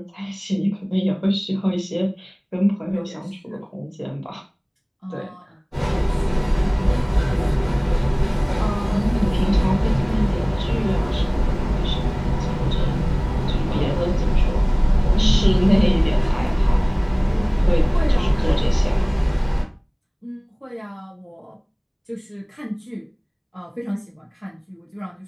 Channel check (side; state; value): both; identical; correlation 1.00